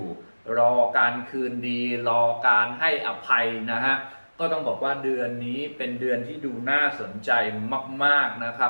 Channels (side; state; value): both; inverted; correlation -1.00